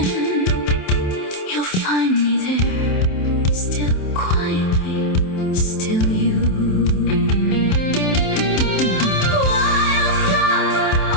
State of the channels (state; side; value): late; right; 27 ms